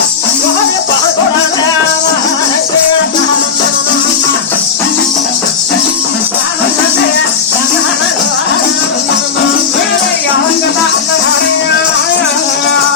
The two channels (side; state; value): right; quieter; 5.9 dB